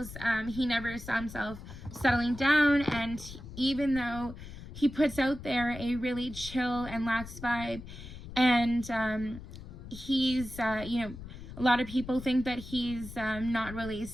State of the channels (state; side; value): noise; left; rumble, 13 dB below the sound